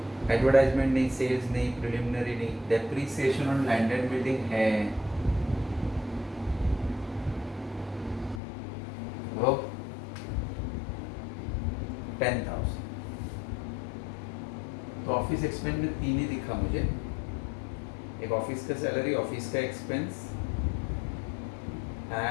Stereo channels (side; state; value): right; drops out; at 8.4 s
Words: एडवर्टाइजमेंट नहीं, सेल्स नहीं, प्रिलिमिनरी नहीं, depreciation on land and building है वो 10,000। तो ऑफिस एक्सपेंस में 3 ही दिखा मुझे, एक ऑफिस का सैलरी, ऑफिस का expense